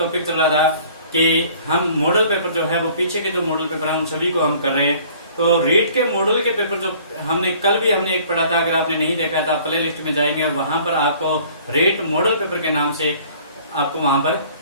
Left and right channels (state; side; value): inverted; both; correlation -0.53